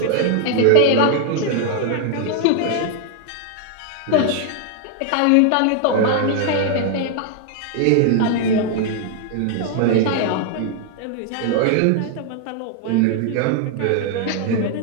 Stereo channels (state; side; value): different; both; correlation 0.00